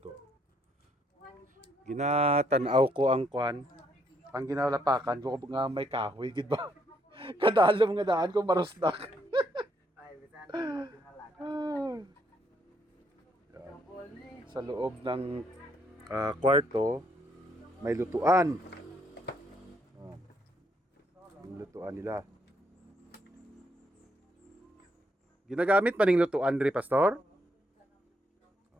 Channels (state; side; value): normal; both; correlation 0.72